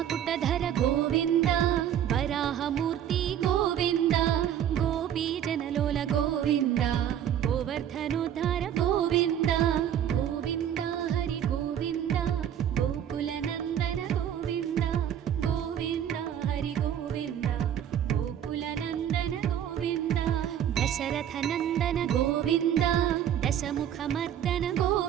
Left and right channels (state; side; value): quieter; left; 9.9 dB